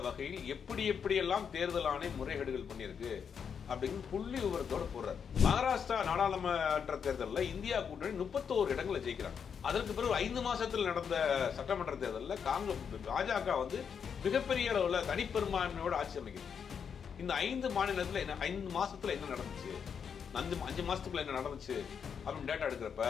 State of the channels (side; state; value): right; quieter; 7.0 dB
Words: வகையில் எப்படியெல்லாம் தேர்தல் ஆணையம் முறைகேடுகள் பண்ணியிருக்கு அப்படின்னு புள்ளி விவரத்தோட போடுறார். மகாராஷ்டிரா நாடாளுமன்ற தேர்தலில் இந்தியா கூட்டணி 31 இடங்களை ஜெயிக்கிறாங்க. அதற்கு பிறகு 5 மாசத்தில் நடந்த சட்டமன்ற தேர்தலில் பாஜக மிகப்பெரிய அளவில் தனிப்பெரும்பான்மையோட ஆட்சி அமைக்குது. இந்த 5 மாநிலத்தில் 5 மாசத்துல என்ன நடந்துச்சு, 5 மாசத்துக்குள்ள என்ன நடந்துச்சு அப்படின்னு டேட்டா எடுக்கிறப்ப